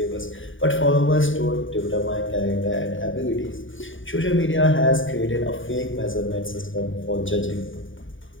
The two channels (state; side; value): late; right; 0.57 ms